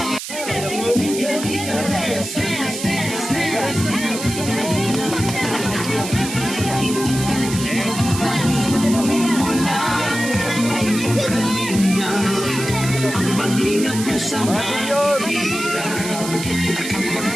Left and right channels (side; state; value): right; noise; hiss, 8 dB below the sound